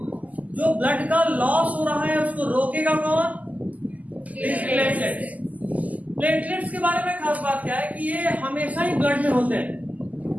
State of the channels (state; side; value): late; left; 0.077 ms